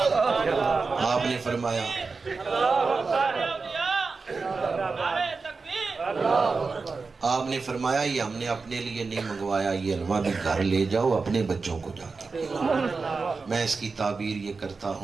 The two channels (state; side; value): quieter; left; 4.4 dB